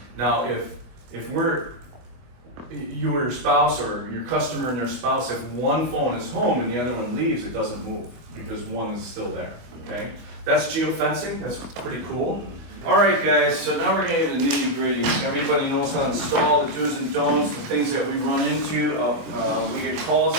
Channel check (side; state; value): left; late; 24 ms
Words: Now, if you or your spouse or your customer and their spouse, if one phone is home and the other one leaves, it doesn't move because one is still there, okay? That's geofencing, that's pretty cool. All right, guys, so now we're getting into the nitty gritty. Everybody knows how to install the do's and don'ts, the things that we run into, we get calls